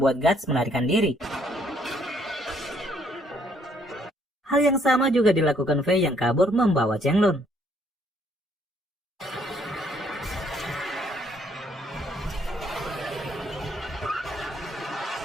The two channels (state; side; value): normal; both; correlation 0.67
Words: Guts melarikan diri. Hal yang sama juga dilakukan Fei yang kabur membawa Chenglong.